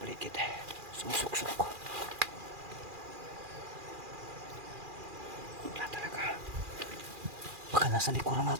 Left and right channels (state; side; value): late; left; 2.4 ms